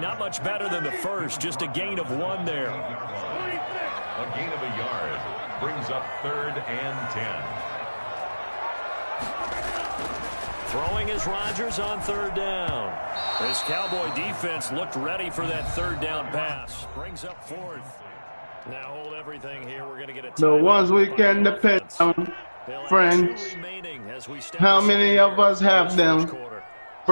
much better than the first, just a gain of 1 there. A gain of a yard brings up 3rd and 10. Throwing is Rodgers on 3rd down. This Cowboy defense looked ready for that 3rd down pass. Brings up 4th. Now hold everything here. We're going to get a the ones we can depend on, friends. How many of us have them,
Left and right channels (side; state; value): both; inverted; correlation -1.00